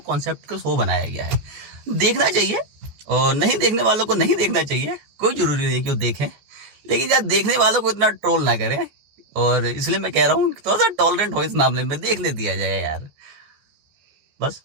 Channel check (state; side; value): late; left; 14 ms